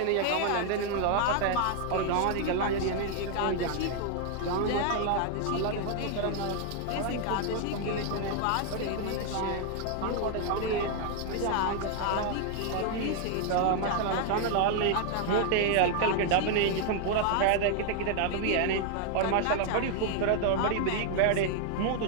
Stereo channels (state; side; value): different; both; correlation 0.00